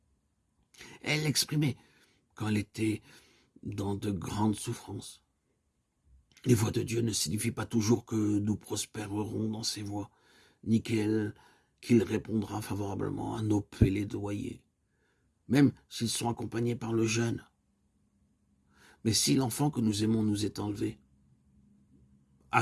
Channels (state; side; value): identical; both; correlation 1.00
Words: Elle l'exprimait quand elle était dans de grandes souffrances. Les voies de Dieu ne signifient pas toujours que nous prospérerons dans ses voies, ni qu'il répondra favorablement à nos plaidoyers, même s'ils sont accompagnés par le jeûne. Mais si l'enfant que nous aimons nous est enlevé,